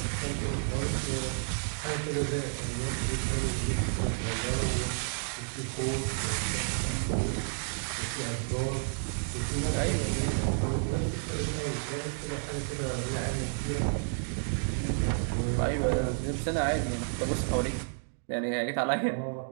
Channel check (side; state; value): left; silent; digital silence